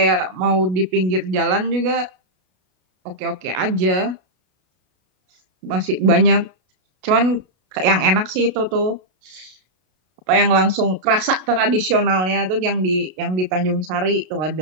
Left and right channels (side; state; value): left; late; 32 ms